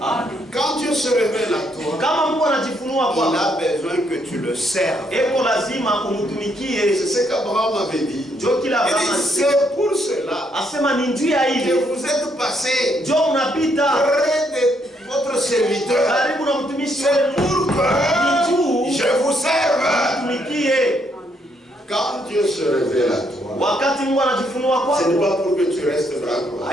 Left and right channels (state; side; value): normal; both; correlation 0.73